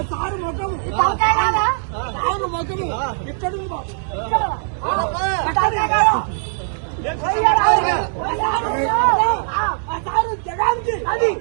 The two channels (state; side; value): silent; left; 66 dB below the other